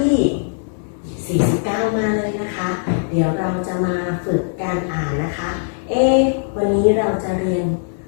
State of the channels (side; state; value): right; silent; 66 dB below the other